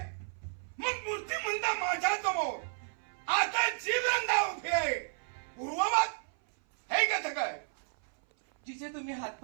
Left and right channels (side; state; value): left; silent; 56 dB below the other